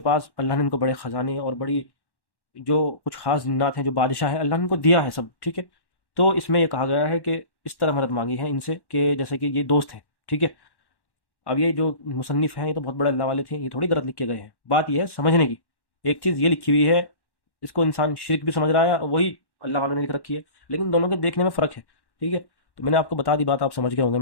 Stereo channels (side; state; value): right; late; 1.1 ms